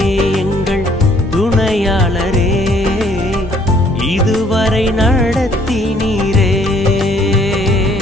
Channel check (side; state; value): both; normal; correlation 0.62